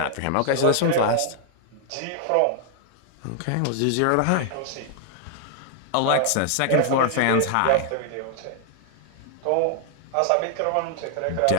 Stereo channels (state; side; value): different; both; correlation 0.00